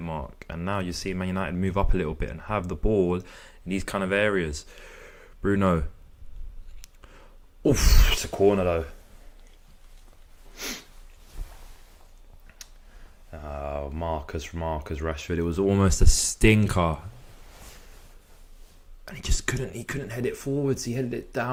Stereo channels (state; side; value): identical; both; correlation 1.00